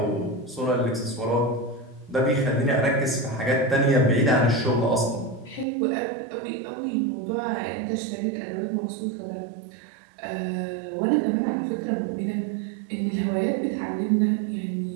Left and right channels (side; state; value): left; drops out; at 5.7 s